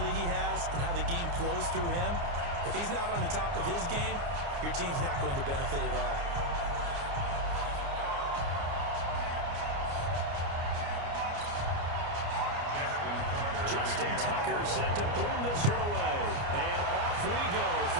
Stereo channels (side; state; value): left; late; 29 ms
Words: he has and how the game flows through him, if he's not on the top of his game, your team's not going to benefit at all. Justin Tucker set to boom this one away. And off we go